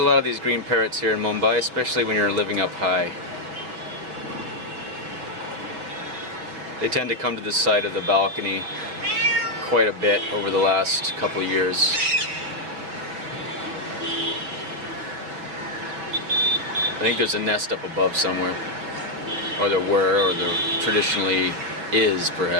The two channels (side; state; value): left; late; 5.7 ms